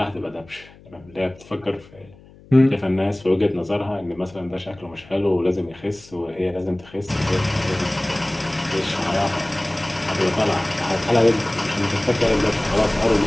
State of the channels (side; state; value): left; noise; hum, 24 dB below the sound